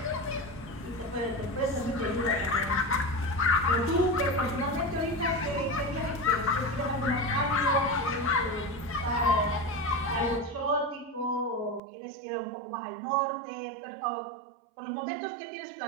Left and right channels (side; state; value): left; drops out; at 11.8 s